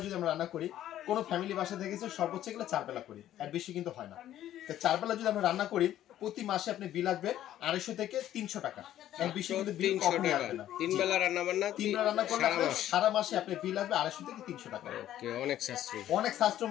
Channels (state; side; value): quieter; right; 12.3 dB